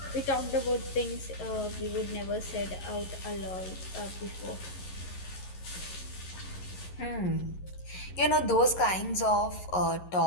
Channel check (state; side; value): late; right; 11 ms